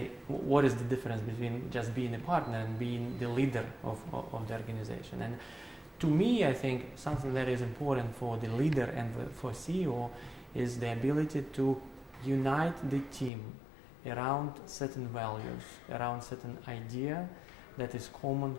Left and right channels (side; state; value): right; drops out; at 13.3 s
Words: what is the difference between just being a partner and being the leader of the organization. And to me, I think something that is important for the leader and for CEO is the ability to unite the team around certain values, around certain idea that is common